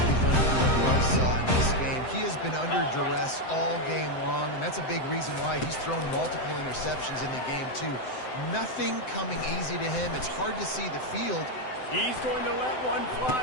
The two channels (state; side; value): late; right; 7.8 ms